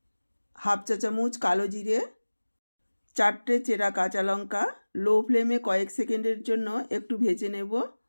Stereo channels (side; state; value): both; inverted; correlation -1.00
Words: হাফ চা চামচ কালো জিরে, 4টে চেরা কাঁচা লঙ্কা। লো ফ্লেমে কয়েক সেকেন্ডের জন্য একটু ভেজে নেব।